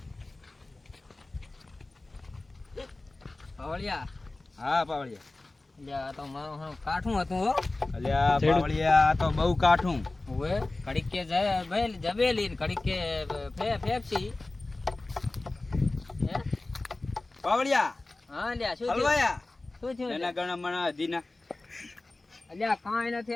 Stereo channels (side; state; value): right; quieter; 3.0 dB